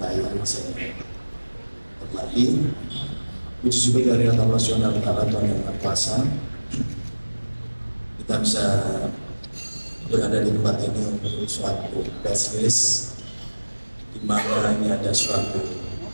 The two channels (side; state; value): both; inverted; correlation -1.00